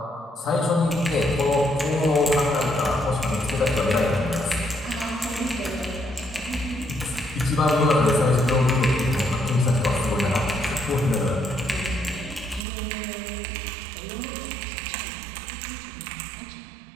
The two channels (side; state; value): left; drops out; at 12.7 s